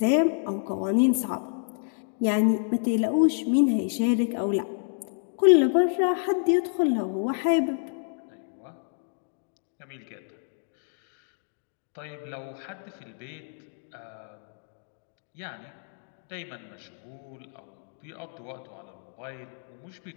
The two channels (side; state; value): right; silent; digital silence